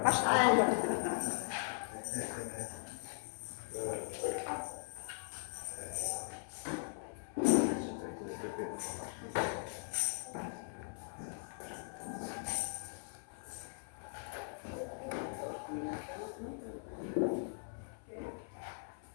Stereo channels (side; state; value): right; silent; 51 dB below the other